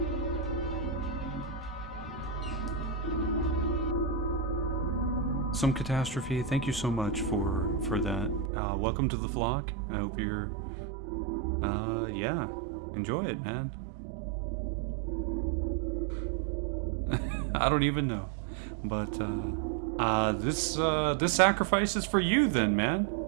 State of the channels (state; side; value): drops out; left; at 8.5 s